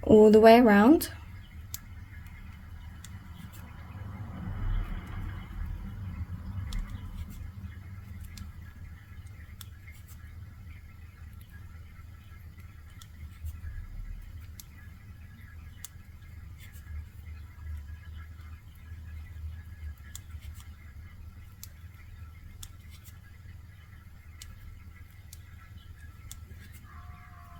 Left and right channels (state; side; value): identical; both; correlation 1.00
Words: All the way around.